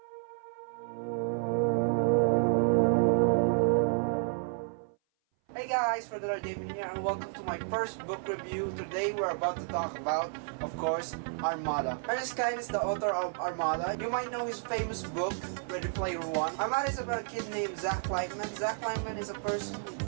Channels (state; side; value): silent; left; 57 dB below the other